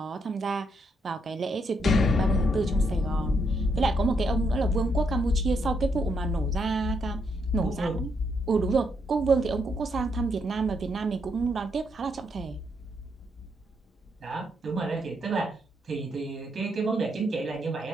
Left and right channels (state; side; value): normal; both; correlation 0.77